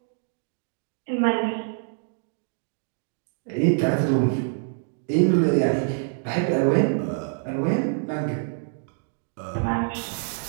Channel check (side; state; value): left; silent; 61 dB below the other